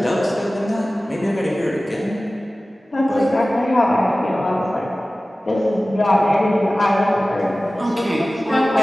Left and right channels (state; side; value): normal; both; correlation 0.97